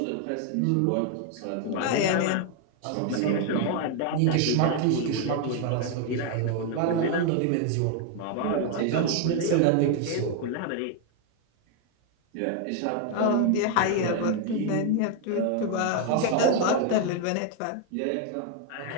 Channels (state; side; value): different; both; correlation 0.01